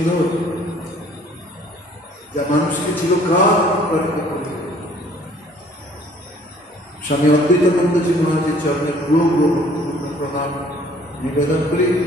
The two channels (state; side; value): normal; both; correlation 0.56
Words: যা মানুষকে চিরকাল অনুপ্রাণিত করবে। স্বামী অদ্বৈতানন্দজি মহারাজের চরণে পূর্ব প্রণাম নিবেদন করি।